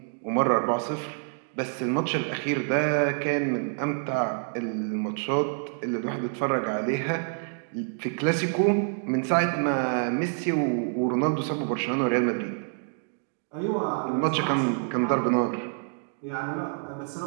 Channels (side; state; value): left; silent; 58 dB below the other